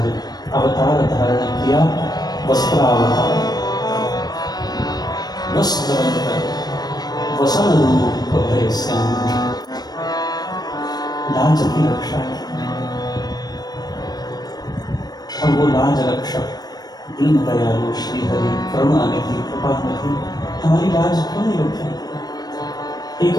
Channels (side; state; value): right; late; 0.19 ms